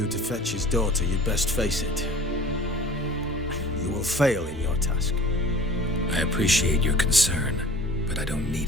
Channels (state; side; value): normal; both; correlation 0.44